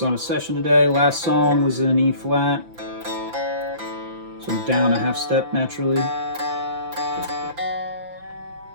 on a session today. Last song was in E flat, so I'm down a half step naturally.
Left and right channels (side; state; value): left; late; 5.9 ms